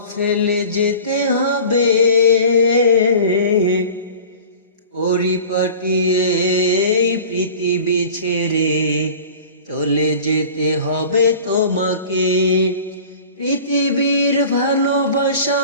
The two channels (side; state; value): both; inverted; correlation -0.41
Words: ফেলে যেতে হবে। পরিপাটিয়ে এই পৃথিবী ছেড়ে চলে যেতে হবে তোমাকে। পৃথিবীর ভালোবাসা,